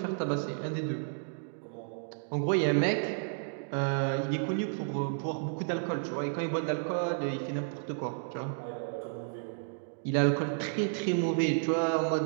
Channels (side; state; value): left; silent; digital silence